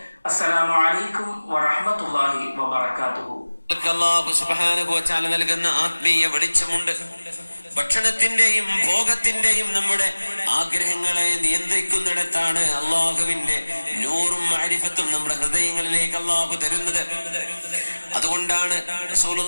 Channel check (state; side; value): inverted; both; correlation -1.00